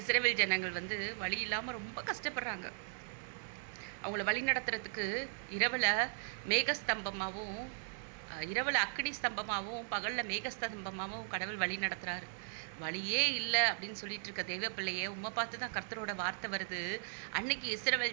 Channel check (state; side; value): silent; left; digital silence